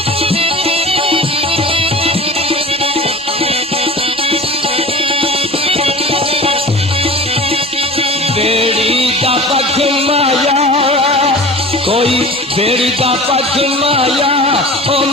बेड़ी का पख माया कोई बेड़ी का पख माया ओ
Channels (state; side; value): normal; both; correlation 0.37